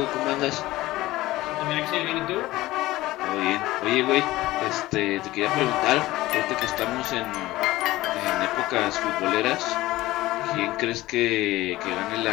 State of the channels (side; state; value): right; quieter; 17.5 dB